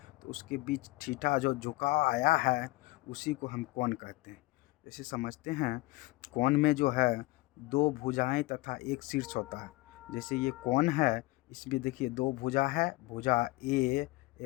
तो उसके बीच थीटा जो झुकाव आया है उसी को हम कोण कहते हैं। जैसे समझते हैं, कोण में जो है दो भुजाएं तथा एक शीर्ष होता है। जैसे ये कोण है, इसमें देखिए दो भुजा है, भुजा ए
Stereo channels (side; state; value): right; quieter; 21.1 dB